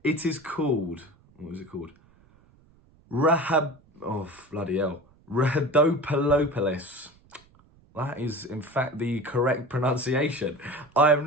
It is called, what was it called? Rhabdomyolysis. That is, in fact, the correct pronunciation. I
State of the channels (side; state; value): right; noise; rumble, 30 dB below the sound